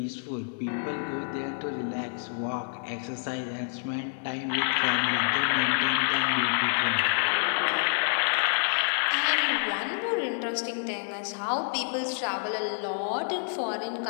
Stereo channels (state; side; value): silent; right; digital silence